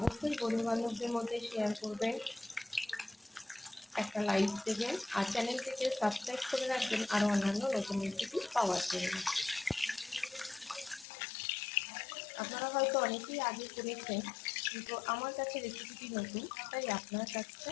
বন্ধুবান্ধবদের মধ্যে শেয়ার করবেন, একটা লাইক দেবেন, আর চ্যানেলটিকে সাবস্ক্রাইব করে রাখবেন আরও অন্যান্য নতুন রেসিপি পাওয়ার জন্য। আপনারা হয়তো অনেকেই আগে করেছেন, কিন্তু আমার কাছে রেসিপিটি নতুন, তাই আপনার কাছে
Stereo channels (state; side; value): drops out; right; at 11.1 s